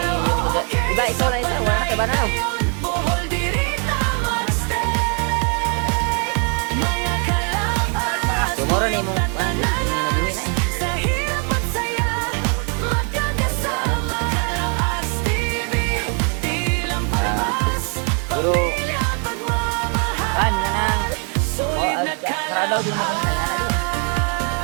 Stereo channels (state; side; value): quieter; left; 39.1 dB